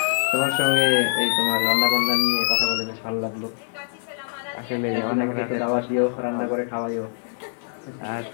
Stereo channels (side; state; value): right; silent; 57 dB below the other